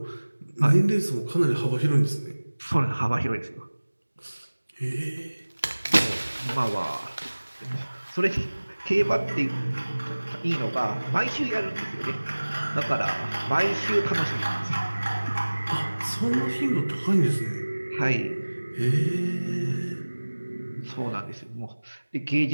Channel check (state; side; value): inverted; both; correlation -1.00